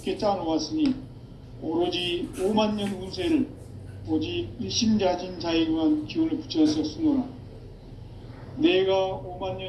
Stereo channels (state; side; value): identical; both; correlation 1.00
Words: 짜놓았으니 오로지 5만 년 운세를 오직 일심자진 자에게만 기운을 붙여서 쓰노라. 내가 5만